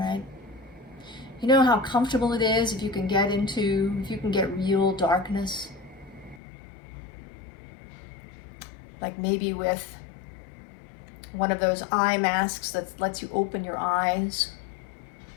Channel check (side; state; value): right; drops out; at 6.4 s